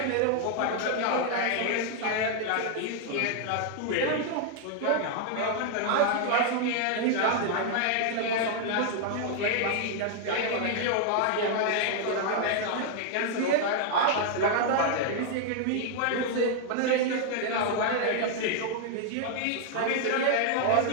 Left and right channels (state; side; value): different; both; correlation 0.00